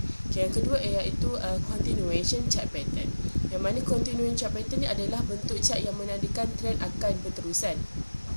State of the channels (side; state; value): both; inverted; correlation -1.00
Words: Yang kedua iaitu continuation chart pattern. Yang mana continuation chart pattern ni adalah bentuk chart yang menandakan trend akan berterusan.